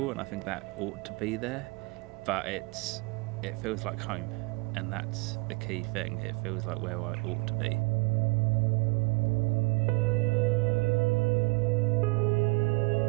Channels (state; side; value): quieter; left; 27.2 dB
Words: and I think that ought to be there, but it feels like home, and that's the key thing. It feels like where I ought to be.